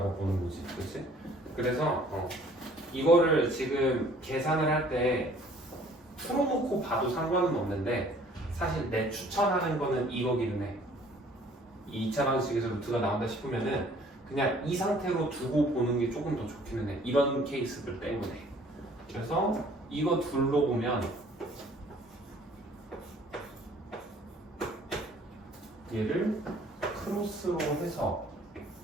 보는 거지, 그렇지? 그래서 이거를 지금 계산을 할 때 풀어놓고 봐도 상관은 없는데 사실 내 추천하는 거는 이거기는 해. 이 2차 방식에서 루트가 나온다 싶으면은 그냥 이 상태로 두고 보는 게 조금 더 좋기는 해. 이런 케이스들 때문에. 그래서 이거 둘로 보면 얘를 크로스로 해서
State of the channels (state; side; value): normal; both; correlation 0.56